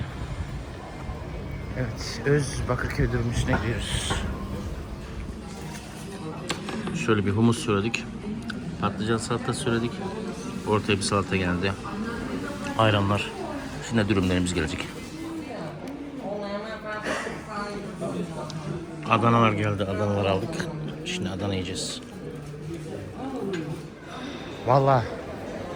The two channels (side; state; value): both; identical; correlation 1.00